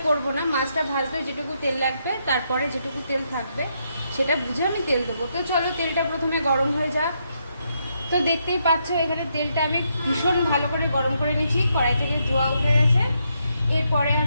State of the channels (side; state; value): both; inverted; correlation -0.78